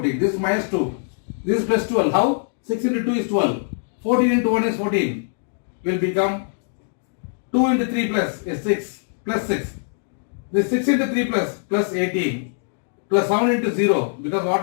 This is minus 2, this is plus 12. How? 6 into 2 is 12. 14 into 1 is 14. Will become 2 into 3 plus is 6. Plus 6. This 6 into 3 plus 18. Plus 7 into 0 because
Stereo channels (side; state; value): right; silent; digital silence